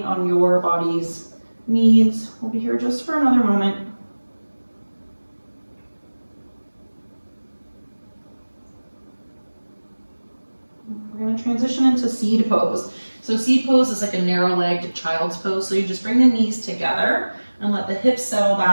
on your body's needs. We'll be here just for another moment. We're going to transition into seed pose. So seed pose is like a narrow-legged child's pose. So you just bring the knees together and let the hips settle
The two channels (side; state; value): both; inverted; correlation -1.00